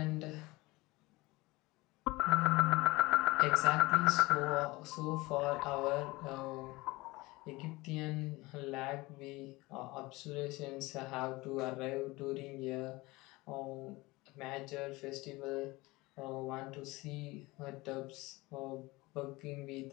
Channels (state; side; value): quieter; right; 21.7 dB